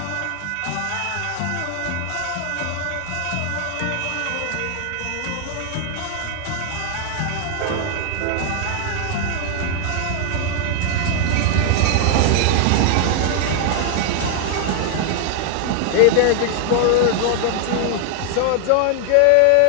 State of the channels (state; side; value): different; both; correlation 0.00